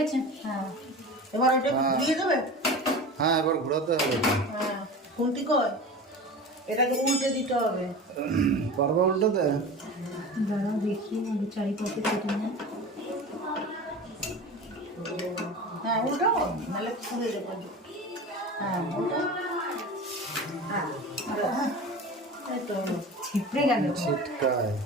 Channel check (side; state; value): both; normal; correlation 0.33